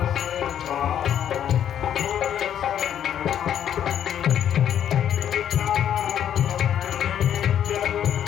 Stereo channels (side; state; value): right; quieter; 9.9 dB